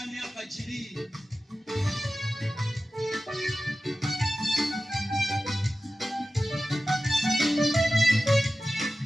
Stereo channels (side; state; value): both; normal; correlation 0.95